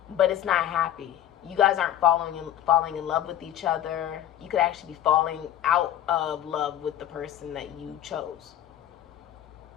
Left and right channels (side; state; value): right; quieter; 11.5 dB